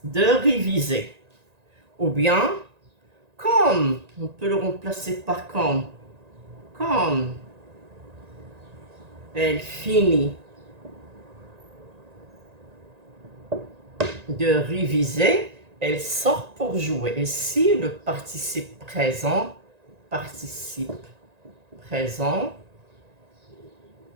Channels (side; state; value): left; late; 1.9 ms